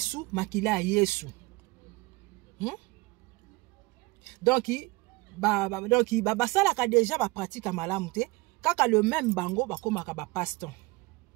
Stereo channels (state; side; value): quieter; left; 23.0 dB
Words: Makila Yesu. Donc, donc basala déjà ba pratique malamu te kaka le même bango bakomaka ba paston